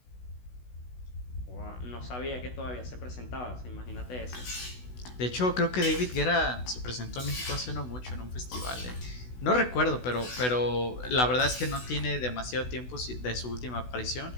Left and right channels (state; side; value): late; right; 16 ms